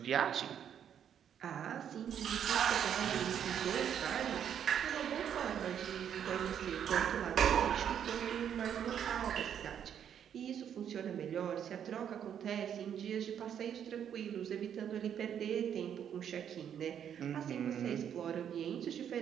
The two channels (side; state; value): left; quieter; 8.9 dB